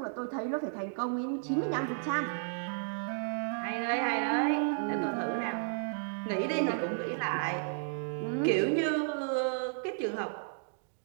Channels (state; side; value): silent; left; digital silence